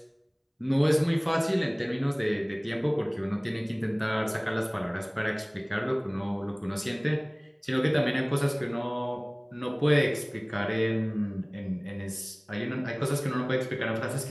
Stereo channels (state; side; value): identical; both; correlation 1.00